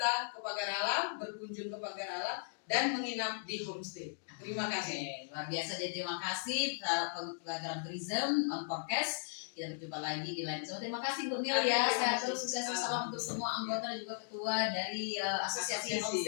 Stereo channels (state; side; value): silent; right; digital silence